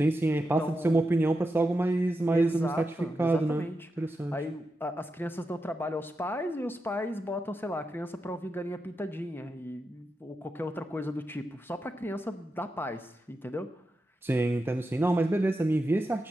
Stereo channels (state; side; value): normal; both; correlation 0.88